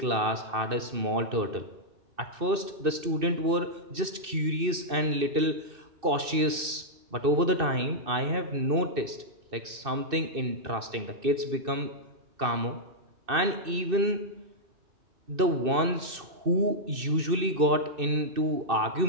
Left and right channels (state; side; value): late; left; 2.6 ms